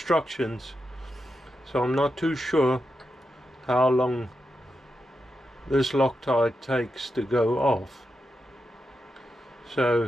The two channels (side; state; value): both; normal; correlation 0.87